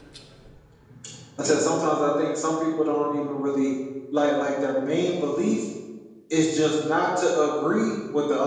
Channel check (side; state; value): both; identical; correlation 1.00